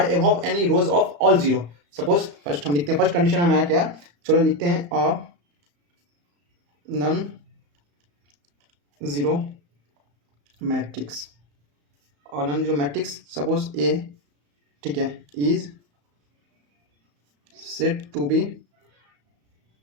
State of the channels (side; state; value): left; late; 35 ms